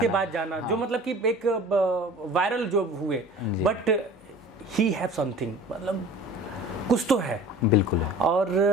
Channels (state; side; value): normal; both; correlation 0.43